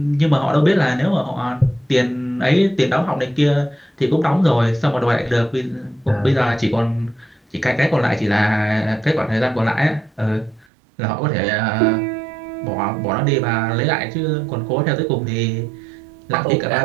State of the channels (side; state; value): left; drops out; at 10.7 s